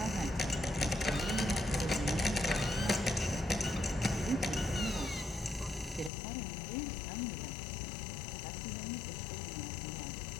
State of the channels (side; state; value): right; drops out; at 6.1 s